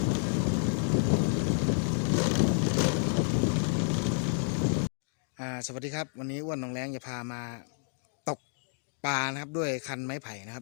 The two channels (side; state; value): right; silent; 58 dB below the other